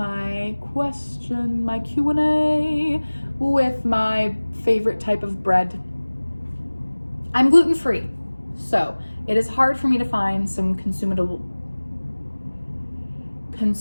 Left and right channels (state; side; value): inverted; both; correlation -1.00